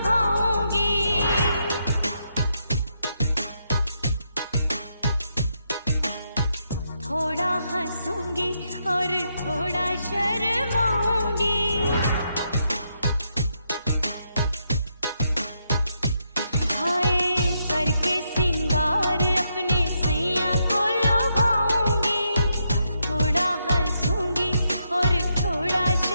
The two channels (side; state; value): both; inverted; correlation -0.80